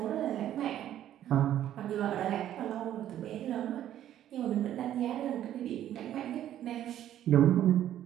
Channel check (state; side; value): quieter; left; 11.6 dB